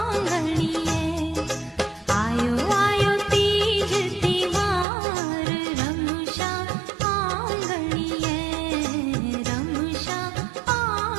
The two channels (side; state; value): left; drops out; at 4.9 s